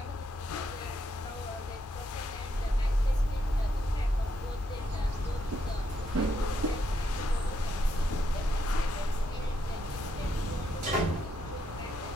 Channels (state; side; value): normal; both; correlation 0.78